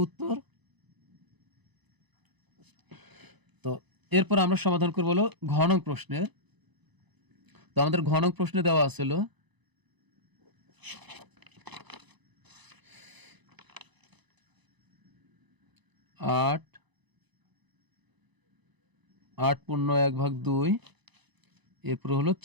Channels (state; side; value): late; left; 1.0 ms